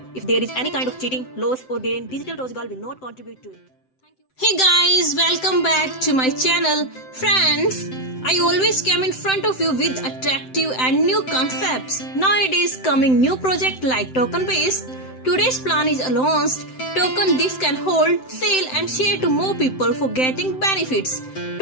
is any kind of cheating, loss or gain, Digital Rozgar will not contribute to it. Hey guys, welcome back to my channel. Friends, I always come in front of you with attractive and new concepts. Nowadays coming new project like token based. Today's plan is launched. Token this can hold, sell and share to more people for getting benefits.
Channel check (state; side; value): late; right; 7.8 ms